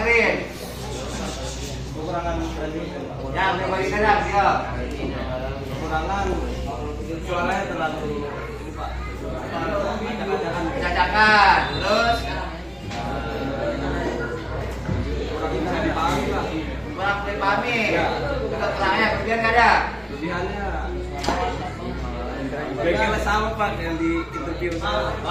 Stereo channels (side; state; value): both; identical; correlation 1.00